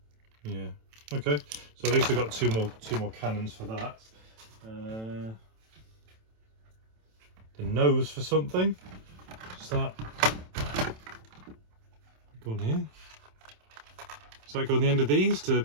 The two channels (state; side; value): late; left; 27 ms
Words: yeah, okay. So at least I've got two more cannons for that. The nose for something. Is that go on here? Does that go on the end of these to